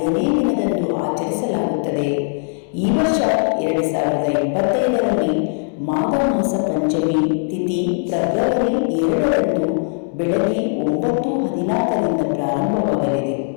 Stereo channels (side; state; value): right; silent; digital silence